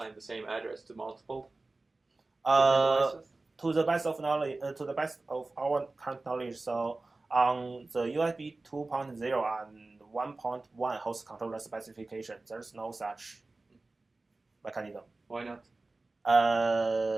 the same address to multiple devices? To the best of knowledge, to the best of our current knowledge, so on the USB 2.0 and 1.1 host controller specification, there's no such mechanism. Why not?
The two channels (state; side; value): quieter; left; 3.3 dB